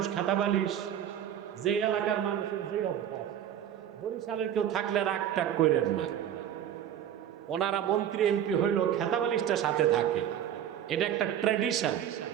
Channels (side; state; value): left; quieter; 10.2 dB